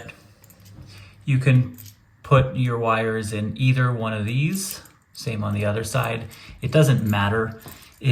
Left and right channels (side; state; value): both; identical; correlation 1.00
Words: you can put your wires in either one of these. Same on the other side. It doesn't matter.